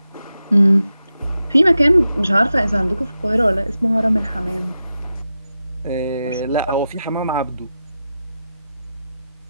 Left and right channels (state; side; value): inverted; both; correlation -0.90